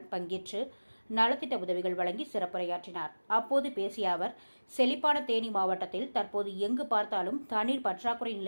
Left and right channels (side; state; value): both; inverted; correlation -1.00